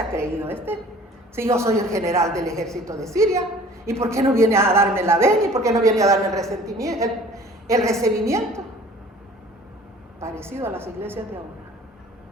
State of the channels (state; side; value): normal; both; correlation 0.49